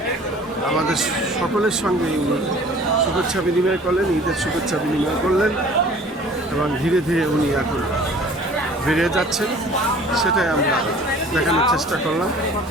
আমাদের সকলের সঙ্গে উনি শুভেচ্ছা বিনিময় করলেন, ঈদের শুভেচ্ছা বিনিময় করলেন এবং ধীরে ধীরে উনি এখন বেরিয়ে যাচ্ছেন। সেটাই আমরা দেখানোর চেষ্টা করলাম।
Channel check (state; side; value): normal; both; correlation 0.49